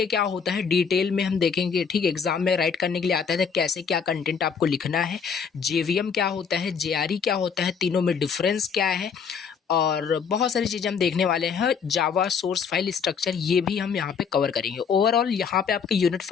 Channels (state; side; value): quieter; right; 6.3 dB